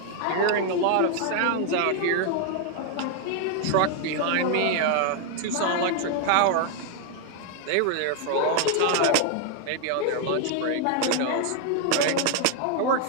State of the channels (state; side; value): different; both; correlation 0.00